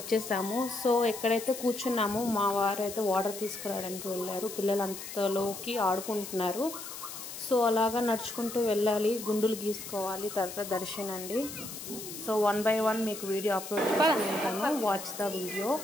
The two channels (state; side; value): noise; left; hiss, 10 dB below the sound